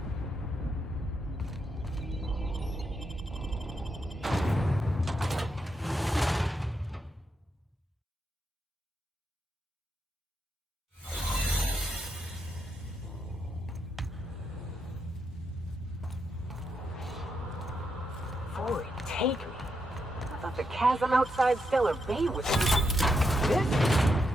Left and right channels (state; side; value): normal; both; correlation 0.82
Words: Forward, take me. I thought the chasm outside Stellar Bay was...